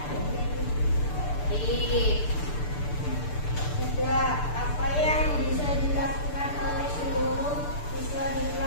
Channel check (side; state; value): right; late; 6.8 ms